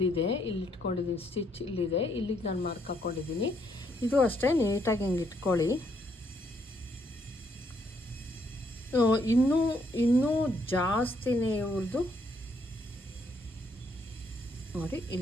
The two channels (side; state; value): both; normal; correlation 0.72